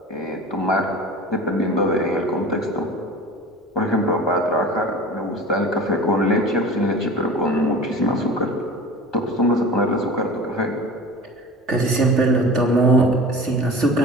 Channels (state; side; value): normal; both; correlation 0.37